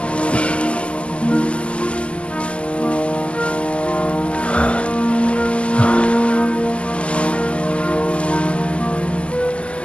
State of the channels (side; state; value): right; late; 0.055 ms